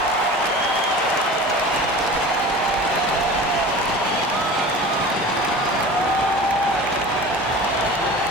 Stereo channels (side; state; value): both; normal; correlation 0.37